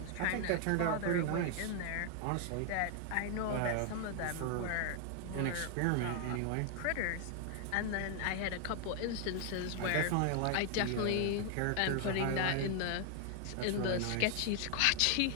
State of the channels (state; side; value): different; both; correlation 0.00